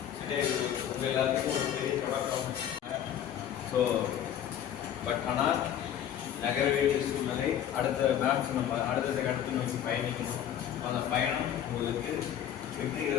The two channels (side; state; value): right; quieter; 10.1 dB